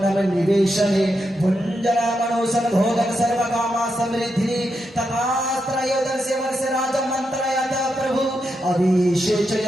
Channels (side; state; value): both; normal; correlation 0.84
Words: নিবেশনে, ভুঞ্জনামনোসন ভোগং সর্বকামা সমৃদ্ধি তথাস্ত্রয়োদস্য বর্ষ রাজা মন্ত্রয়াত প্রভু